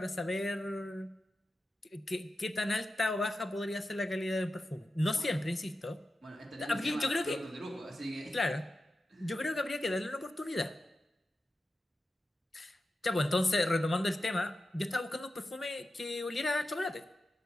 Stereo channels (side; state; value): both; normal; correlation 0.91